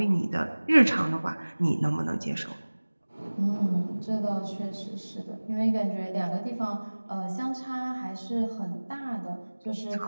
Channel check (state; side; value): inverted; both; correlation -1.00